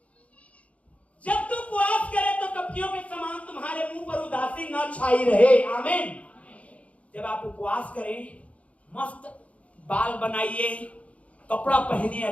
जब तुम उपवास करे तो कपटियों के समान तुम्हारे मुंह पर उदासी न छाई रहे। आमीन। जब आप उपवास करें, मस्त बाल बनाइए, कपड़ा पहनिए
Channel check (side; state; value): right; late; 0.065 ms